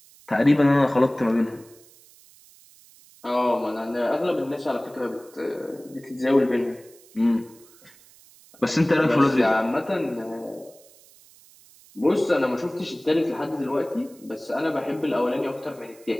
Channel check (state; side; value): noise; right; hiss, 26 dB below the sound